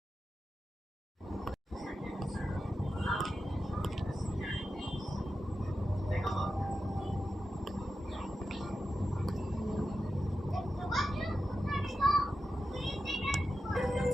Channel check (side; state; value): both; normal; correlation 0.91